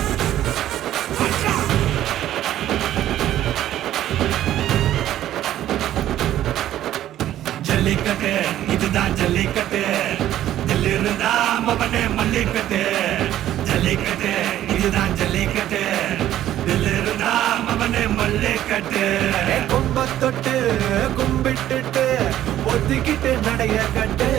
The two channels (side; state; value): left; quieter; 12.6 dB